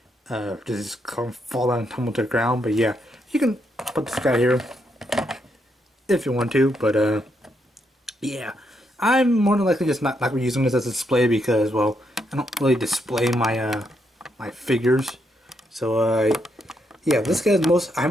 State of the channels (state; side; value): normal; both; correlation 0.78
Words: Just kind of fall down and tumble to the ground. But yeah, you can put this guy here if you want to. But yeah, I'm more than likely just not using this as a display because, well, I don't really display my my figures. So yeah, this guy's